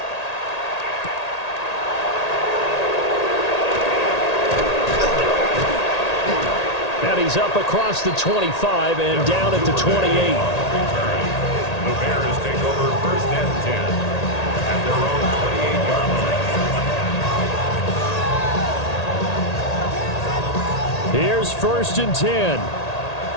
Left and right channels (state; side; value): late; right; 1.8 ms